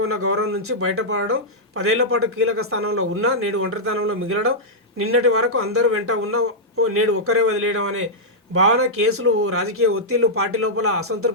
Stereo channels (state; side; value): normal; both; correlation -0.09